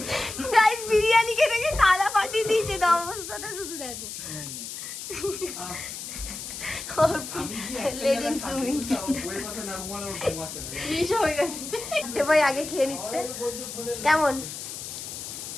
গাইস বিরিয়ানি খেতে গিয়ে থালা ফাটিয়ে দিয়েছে। তো অবস্থাটা শুধু দেখো। লেজেন্ড তুমি ভাই আগে খেয়ে নিচ্ছে। কেমন?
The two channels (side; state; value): left; noise; hiss, 9 dB below the sound